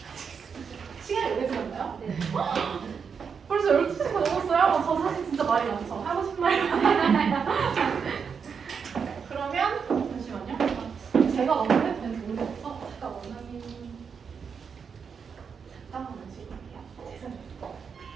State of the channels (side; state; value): left; quieter; 6.3 dB